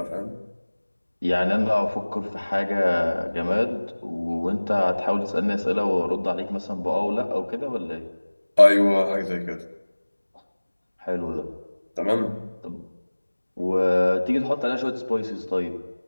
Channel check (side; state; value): both; inverted; correlation -1.00